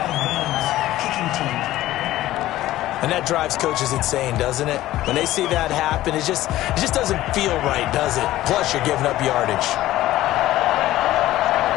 of bounds. Kicking team. And that drives coaches insane, doesn't it? When they see that happen, it just doesn't feel right, does it? Plus, you're giving up yardage.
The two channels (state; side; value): quieter; right; 15.2 dB